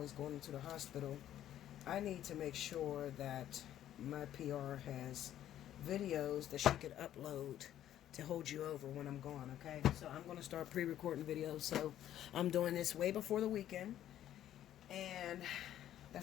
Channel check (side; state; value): right; quieter; 11.8 dB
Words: going into the hospital, I need to make sure that my PR has videos that she could upload to hold you over when I'm gone, okay? So I'm going to start pre-recording videos, so I'm doing this way before the weekend, and